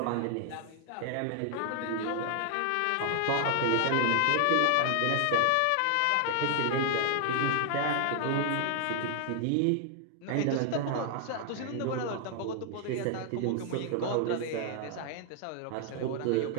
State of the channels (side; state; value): both; different; correlation 0.00